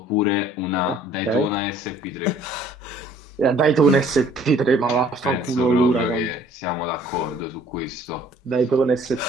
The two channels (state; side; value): normal; both; correlation 0.56